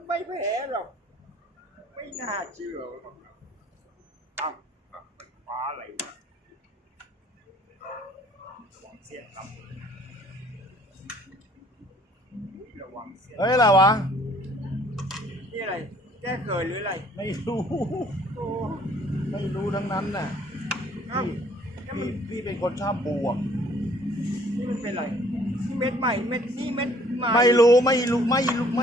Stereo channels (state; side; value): normal; both; correlation 0.58